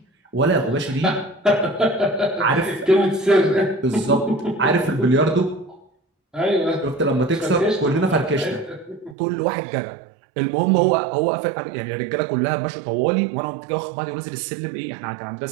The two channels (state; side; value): drops out; left; at 9.2 s